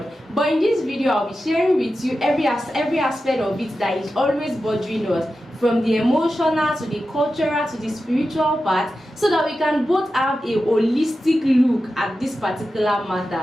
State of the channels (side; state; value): both; normal; correlation 0.92